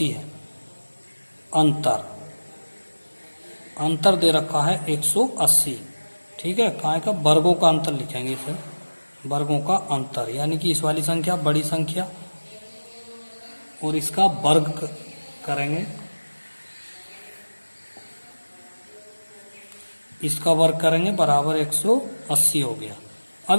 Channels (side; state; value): both; inverted; correlation -1.00